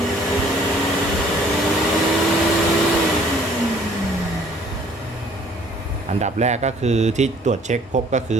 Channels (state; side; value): normal; both; correlation 0.57